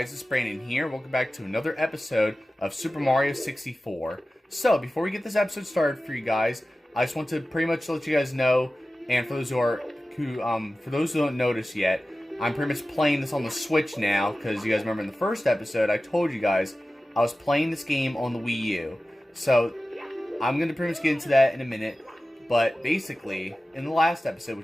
it's Brandin here. Welcome back to another episode of Super Mario 64. So, before we get this episode started for you guys, I just want to pretty much let you guys know, and for those who don't notice yet, I'm pretty much playing this on the Switch now, because you guys remember in the first episode, I told you guys I was playing this game on the Wii U. So, I'm going to pretty much get into that in a minute, but basically, in the last episode,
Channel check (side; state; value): both; normal; correlation 0.95